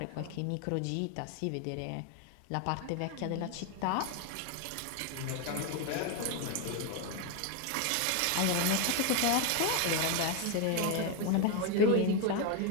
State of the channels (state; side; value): different; both; correlation 0.01